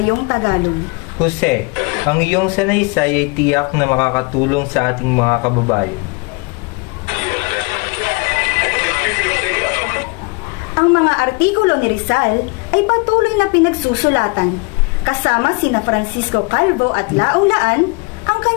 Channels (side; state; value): right; quieter; 29.2 dB